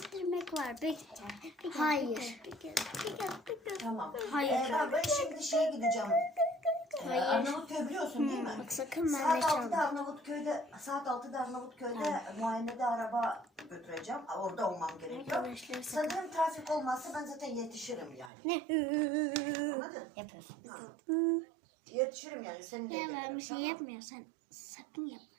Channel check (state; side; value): drops out; left; at 18.3 s